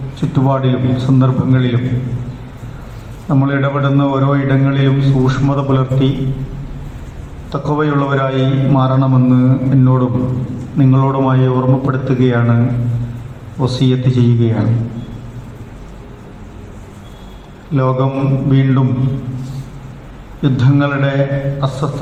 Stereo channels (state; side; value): identical; both; correlation 1.00